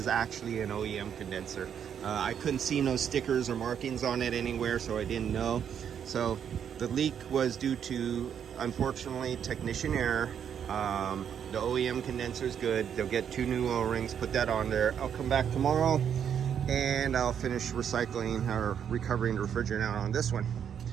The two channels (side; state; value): left; quieter; 8.4 dB